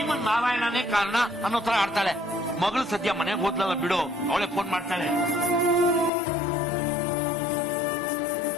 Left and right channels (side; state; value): right; drops out; at 6.1 s